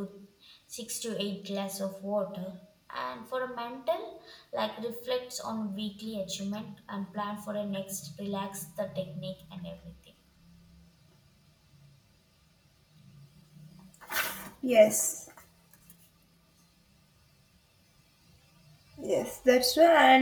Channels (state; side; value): identical; both; correlation 1.00